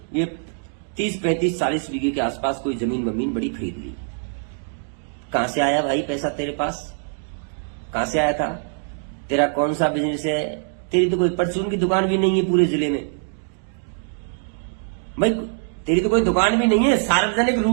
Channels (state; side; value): silent; left; 63 dB below the other